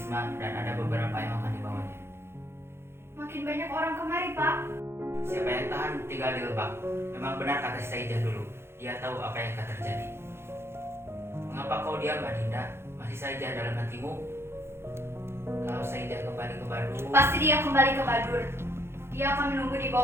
dan ada beberapa yang akan dibawanya. Makin banyak orang kemari, Pak. Siapa yang tahan tinggal di Lebak. Memang benar kata Saija dulu. Dia tahu apa yang akan terjadi. Mengapa kau diam, Adinda? Masih saja dalam hatimu? Kalau Saija kembali ke Badur, Pasti dia kembali ke Badur. Dia akan menunggu di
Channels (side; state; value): left; late; 0.12 ms